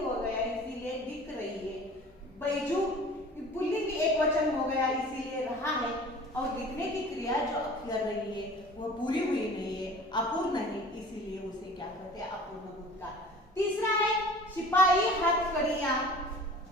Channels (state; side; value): normal; both; correlation 0.44